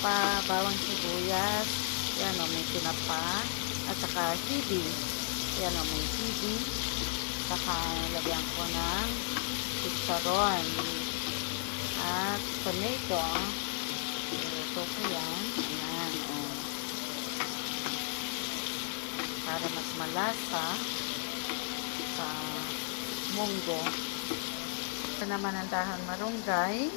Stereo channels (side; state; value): right; silent; digital silence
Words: bawang sibuyas. Yan o, may tinapa. At saka hibi. Yan o, may hibi. Saka lagyan ko ng chicharon. At tomato. Ito ko yan. Ayan o. Para mas malasa sa munggo. Ito naman ang dahon marunggay,